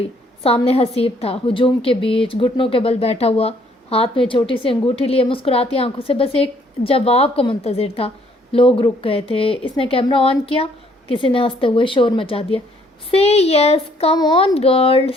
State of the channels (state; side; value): normal; both; correlation 0.64